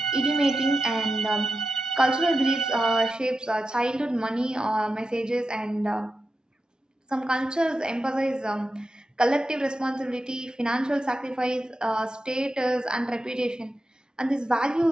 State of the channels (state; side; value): normal; both; correlation 0.90